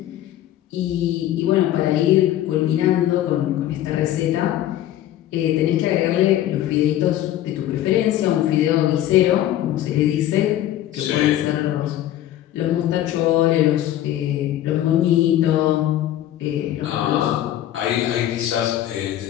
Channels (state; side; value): quieter; right; 12.9 dB